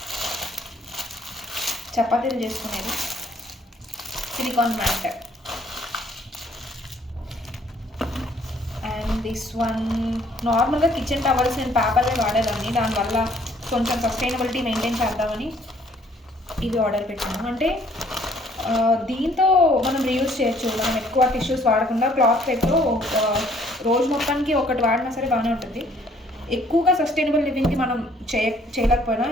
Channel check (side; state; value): both; normal; correlation 0.62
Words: చపాతీలు చేసుకునేది silicon mat. And this one నార్మల్గా kitchen towels నేను పేపర్లే వాడేదాన్ని, దానివల్ల కొంచెం sustainability maintain చేద్దామని ఇవి ఆర్డర్ పెట్టాను. అంటే దీంతో మనం రీయూజ్ చేయొచ్చు, మనం ఎక్కువ టిష్యూస్ వాడకుండా క్లాత్ పేపర్ రోజు మొత్తానికి ఒకటి వాడినా సరే బాగానే ఉంటుంది. ఎక్కువగా సస్టైనబుల్ లివింగ్కి మనం చేయలేకపోయినా